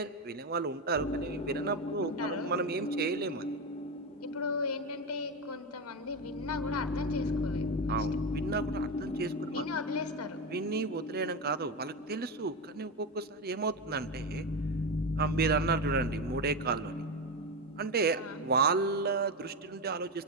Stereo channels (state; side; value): normal; both; correlation 0.15